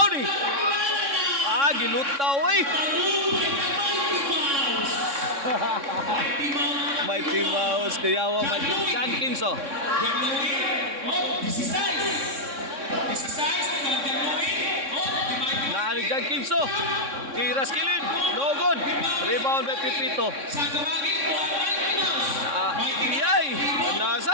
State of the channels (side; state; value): left; late; 3.6 ms